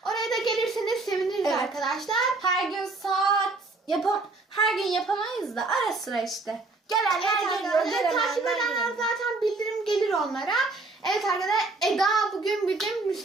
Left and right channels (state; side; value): quieter; left; 3.4 dB